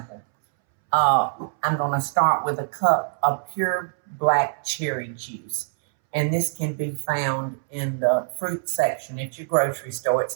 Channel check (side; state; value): left; silent; 63 dB below the other